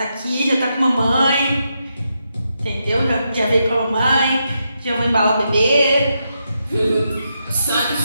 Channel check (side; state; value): both; inverted; correlation -0.83